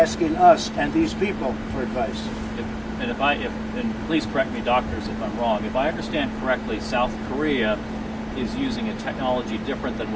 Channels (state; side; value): identical; both; correlation 1.00